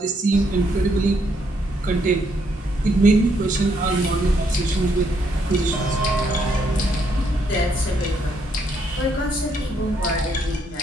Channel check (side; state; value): both; normal; correlation 0.73